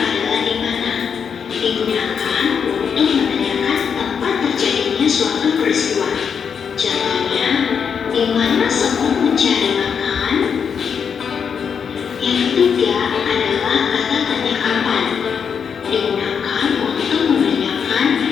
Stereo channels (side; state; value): right; quieter; 6.9 dB